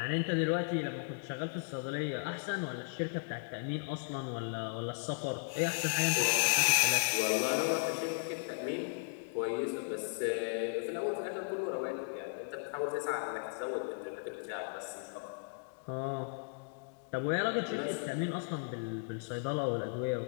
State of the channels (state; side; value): silent; right; digital silence